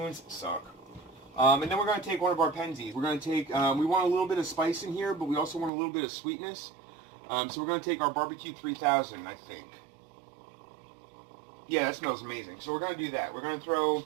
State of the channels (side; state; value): left; drops out; at 5.7 s